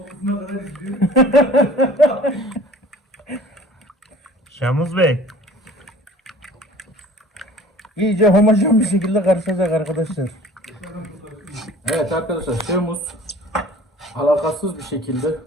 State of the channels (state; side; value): normal; both; correlation 0.47